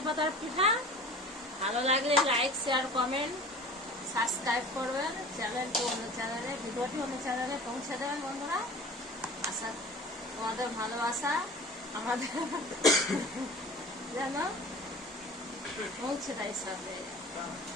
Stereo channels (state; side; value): normal; both; correlation 0.40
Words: পাতার পিঠা। ভালো লাগলে লাইক, শেয়ার, কমেন্ট, সাবস্ক্রাইব করবেন চ্যানেলটি, অন্য চ্যানেলে ভিডিওটি অন্য চ্যানেলে পৌঁছে দেবেন বন্ধুরা। আশা তোমাদের ভালোবাসা আমাদের যেন পৌঁছে দেয় সাথে।